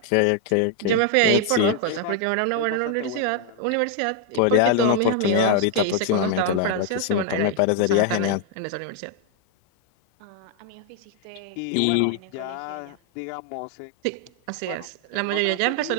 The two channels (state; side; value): different; both; correlation 0.00